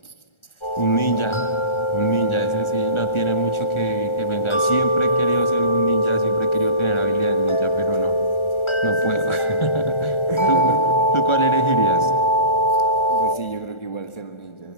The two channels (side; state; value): right; late; 1.4 ms